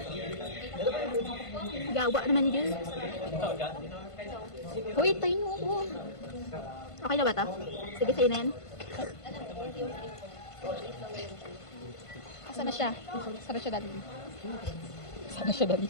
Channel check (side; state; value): right; late; 1.5 ms